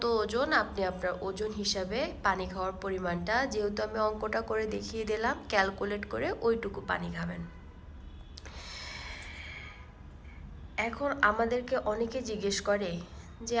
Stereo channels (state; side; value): identical; both; correlation 1.00